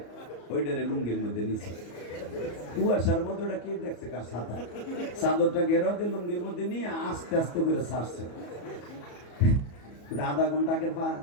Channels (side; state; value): right; late; 34 ms